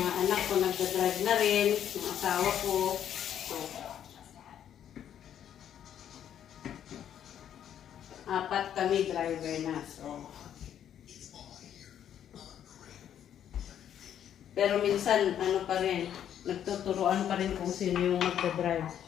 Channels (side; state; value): right; quieter; 9.9 dB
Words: anak ko nagda-drive na rin, yung asawa ko. So, 4 kami driver na. So, pero minsan, pa rin, nagtuturuan pa rin kung sino yung magdadrive.